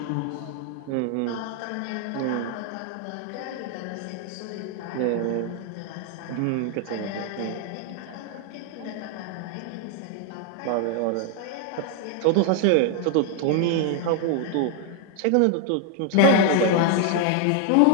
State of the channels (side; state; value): both; different; correlation 0.00